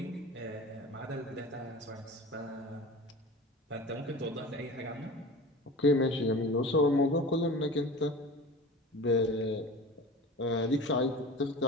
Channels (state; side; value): normal; both; correlation 0.36